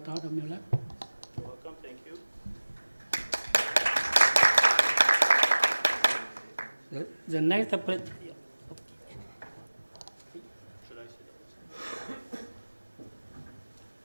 Mueller. You're welcome. Thank you. The next Should I sit down?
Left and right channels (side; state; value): both; inverted; correlation -1.00